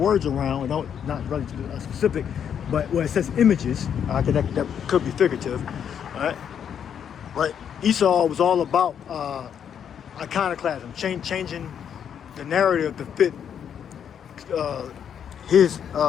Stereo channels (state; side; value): quieter; right; 8.4 dB